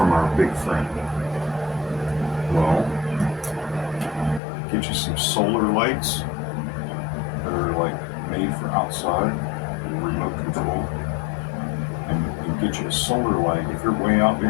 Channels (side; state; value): right; drops out; at 4.4 s